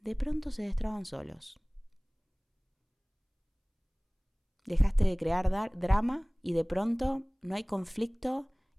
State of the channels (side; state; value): both; identical; correlation 1.00